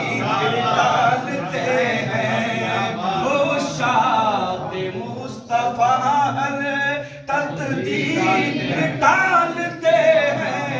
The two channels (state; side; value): identical; both; correlation 1.00